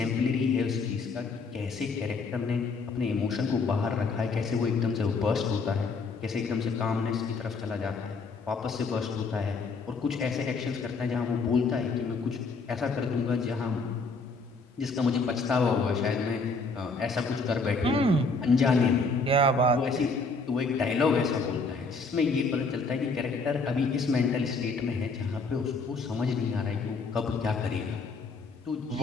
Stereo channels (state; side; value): quieter; right; 4.0 dB